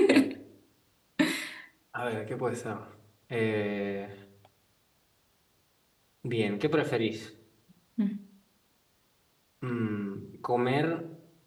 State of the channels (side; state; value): both; identical; correlation 1.00